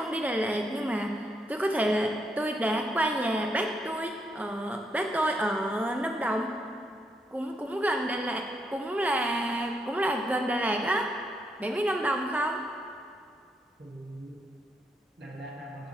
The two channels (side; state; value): both; normal; correlation 0.78